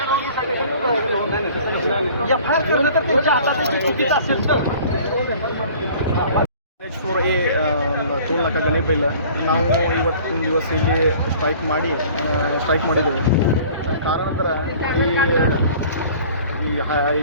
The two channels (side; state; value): both; inverted; correlation -0.48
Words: NH4A ಟೋಲ್ ನಾಕ ಗಣಿಬಿಲ್ಲ ನಾವು ಇವತ್ತಿನ ದಿವಸ ಇಲ್ಲಿ ಸ್ಟ್ರೈಕ್ ಮಾಡಿದ್ದೇವೆ. ಕಾರಣಾಂತರ ಈ